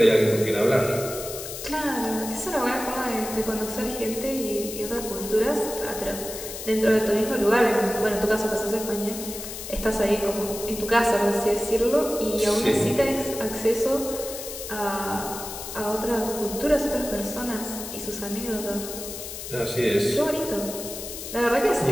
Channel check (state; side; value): noise; left; hiss, 9 dB below the sound